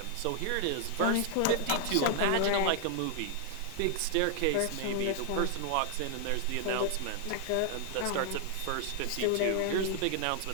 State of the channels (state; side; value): different; both; correlation 0.00